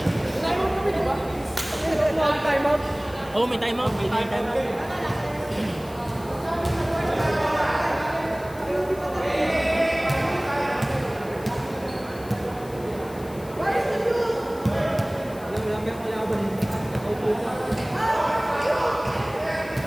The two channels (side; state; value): left; noise; hiss, 21 dB below the sound